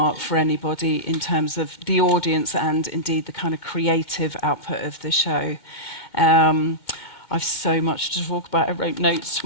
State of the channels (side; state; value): right; late; 2.2 ms